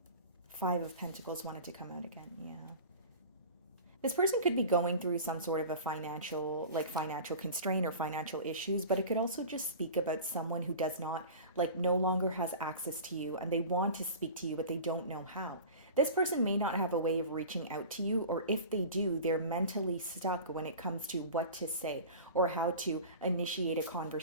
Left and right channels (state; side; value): inverted; both; correlation -0.36